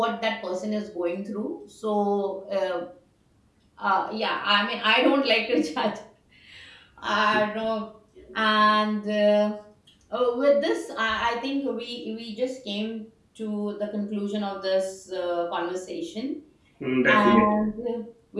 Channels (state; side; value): identical; both; correlation 1.00